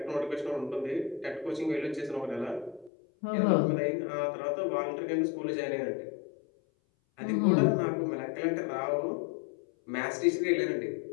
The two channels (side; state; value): right; drops out; at 2.9 s